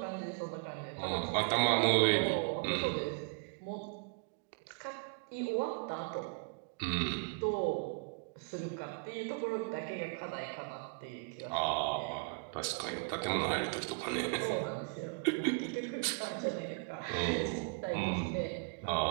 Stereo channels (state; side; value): quieter; left; 39.2 dB